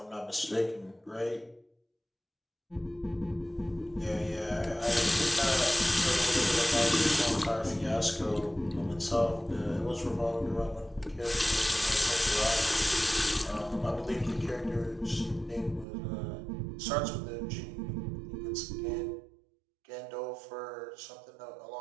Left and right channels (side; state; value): left; drops out; at 15.9 s